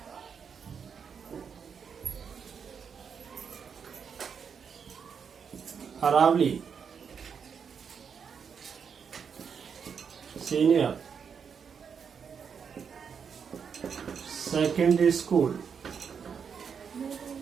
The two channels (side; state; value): left; quieter; 6.7 dB